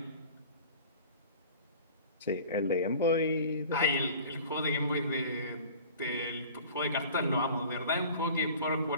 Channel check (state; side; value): inverted; both; correlation -0.44